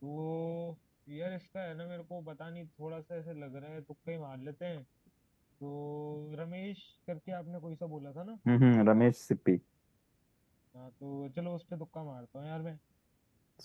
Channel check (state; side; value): identical; both; correlation 1.00